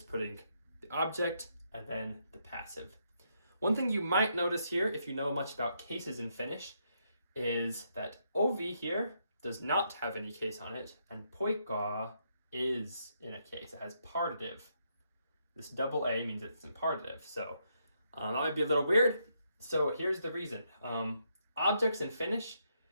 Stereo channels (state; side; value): inverted; both; correlation -0.77